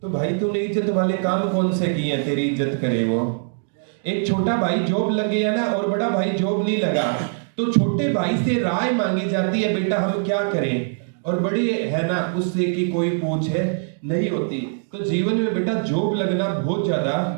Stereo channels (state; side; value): silent; left; digital silence